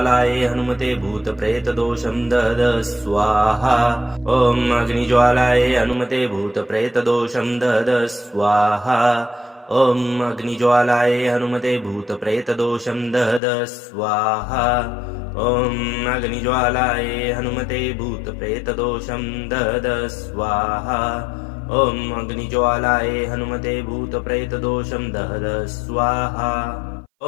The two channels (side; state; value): right; drops out; at 13.4 s